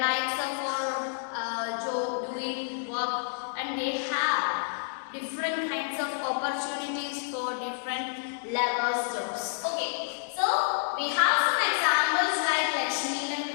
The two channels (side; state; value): right; silent; digital silence